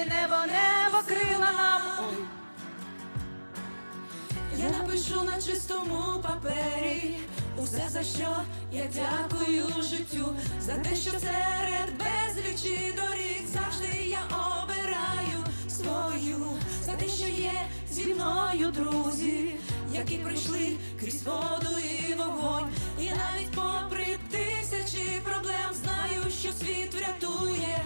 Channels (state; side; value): inverted; both; correlation -1.00